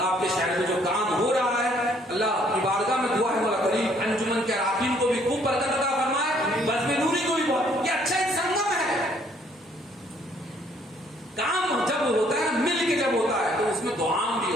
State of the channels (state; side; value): normal; both; correlation 0.64